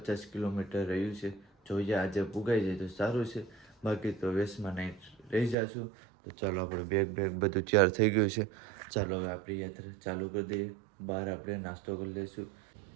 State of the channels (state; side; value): drops out; left; at 5.6 s